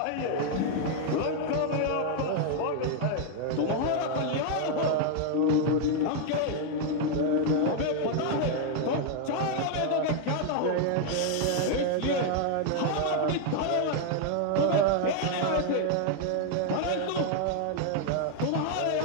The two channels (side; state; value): both; different; correlation 0.00